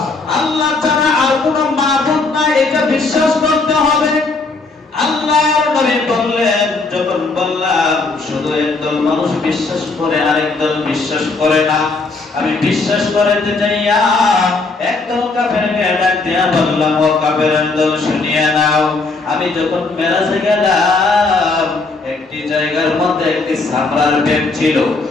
আল্লাহ ছাড়া আর কোনো মাবুদ নাই, এটা বিশ্বাস করতে হবে। আল্লাহর নবী বললেন, যখন বললাম শুধু একদল মানুষ বিশ্বাস করে আরেক দল বিশ্বাস করে না, আমি বিশ্বাস করাতে যাইয়া একদল কাফেরকে ডাক দিয়া বললাম, ও কাফেরের দল শুনিয়া নাও, আমি যখন মেরাজে গেলাম একটি জায়গার মধ্যে একটি সামরার ব্যাগ ছিল,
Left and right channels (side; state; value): right; quieter; 3.7 dB